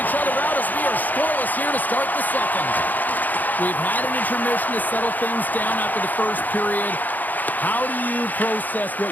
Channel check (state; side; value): late; right; 0.084 ms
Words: each other out as we are scoreless here to start the second. We've had an intermission to settle things down after the first period. How do you process what